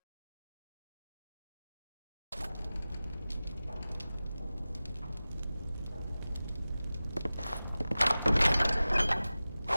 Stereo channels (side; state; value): both; inverted; correlation -0.97